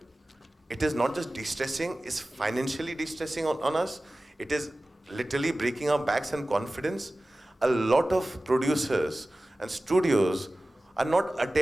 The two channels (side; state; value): both; normal; correlation 0.97